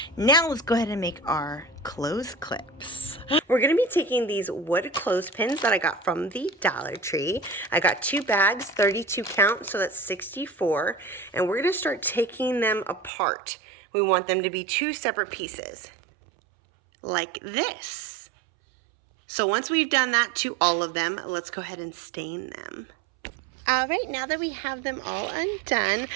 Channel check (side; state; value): left; drops out; at 13.1 s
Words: Now let's go ahead and make our clothes clips. We're gonna be taking these wood clothespins that I got from the Dollar Tree. I got 2 bags, 32 count, so that's 64. And we're gonna start taking them apart. We want them to be 2 separate pieces, like this. So once we've done that to all of them, let's go ahead and stain them. All right, now that we have them all undone,